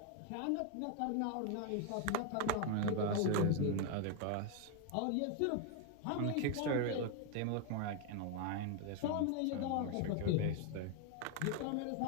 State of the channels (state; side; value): different; both; correlation 0.01